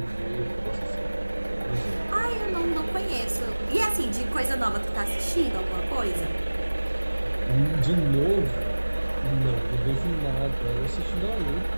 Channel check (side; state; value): both; inverted; correlation -1.00